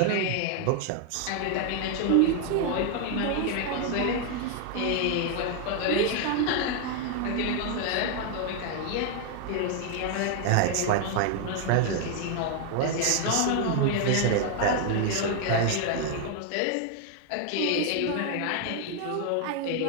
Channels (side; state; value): both; different; correlation 0.00